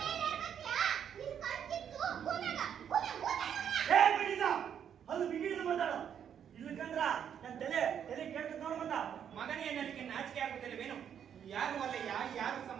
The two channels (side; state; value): left; quieter; 8.6 dB